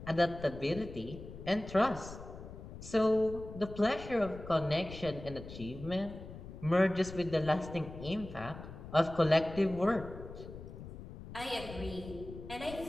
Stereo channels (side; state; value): left; noise; rumble, 13 dB below the sound